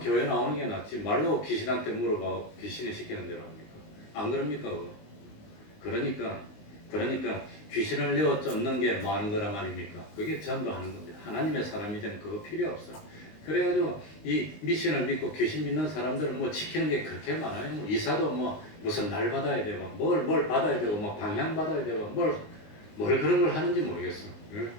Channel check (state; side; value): late; right; 19 ms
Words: 나오는 게 낫지. 말로 귀신한테 물어봐. 귀신이 시키는 대로 합니까? 안 그럽니까? 그러니까 귀신을 내어 쫓는 게 뭐 하는 거란 말입니까? 그게 전도하는 겁니다. 하나님의 사람이 되면 그거 필요 없어. 그래가지고 이 미션을 믿고 귀신 믿는 사람들은 뭐 지키는 게 그렇게 많아요. 뭐 이사도 뭐 무슨 날 받아야 되고 뭘 받아야 되고 뭐 방향 받아야 되고 뭘 그런 걸 하는지 모르겠어.